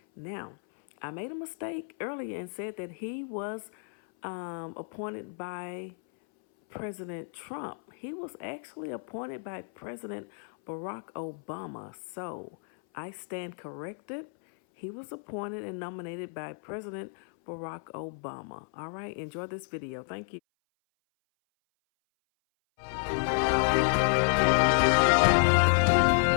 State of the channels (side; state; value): right; silent; 57 dB below the other